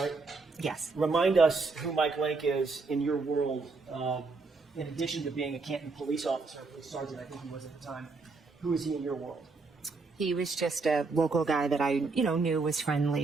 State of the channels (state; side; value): quieter; left; 4.1 dB